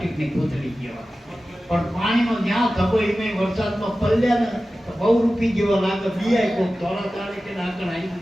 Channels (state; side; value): normal; both; correlation 0.95